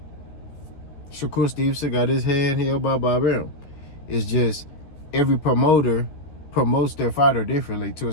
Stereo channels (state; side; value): late; right; 14 ms